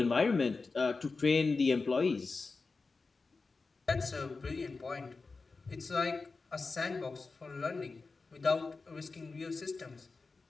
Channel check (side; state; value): right; quieter; 4.1 dB